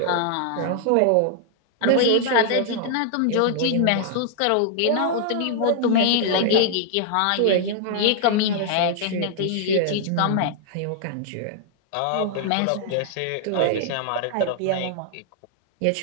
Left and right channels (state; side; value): different; both; correlation -0.01